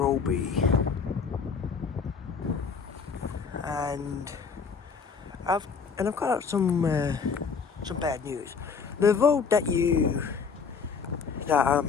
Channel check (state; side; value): quieter; right; 5.7 dB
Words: and I've got some bad news. The vote that